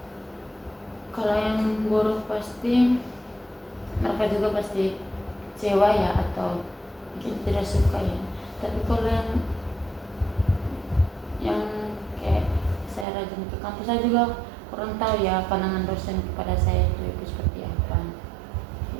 Kalau yang buruk pasti mereka juga pasti kecewa ya atau mungkin tidak suka ya. Tapi kalau yang kayak saya rajin ke kampus, saya juga kurang tahu ya pandangan dosen kepada saya itu seperti apa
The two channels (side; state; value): left; drops out; at 13.1 s